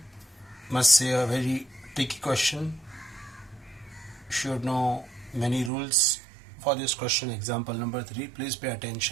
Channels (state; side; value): drops out; left; at 5.7 s